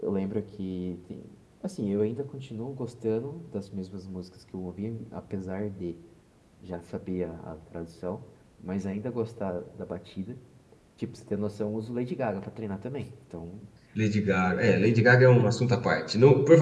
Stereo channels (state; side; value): identical; both; correlation 1.00